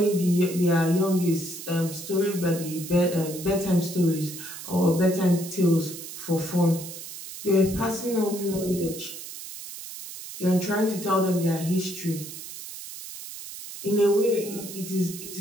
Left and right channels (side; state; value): right; noise; hiss, 11 dB below the sound